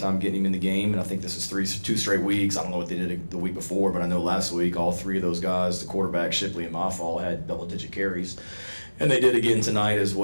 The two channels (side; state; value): both; inverted; correlation -1.00